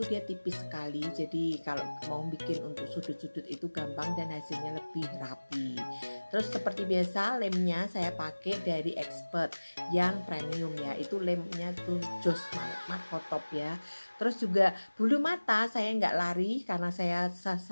dia tipis sekali. Jadi kalau mau bikin untuk sudut-sudut itu gampang dan hasilnya lebih rapi. Terus seperti biasa lemnya saya pakai dari Expert yang premium ya. Itu lemnya tuh jos Markotop ya. Terus juga bulu mata saya nggak lari karena saya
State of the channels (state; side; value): inverted; both; correlation -1.00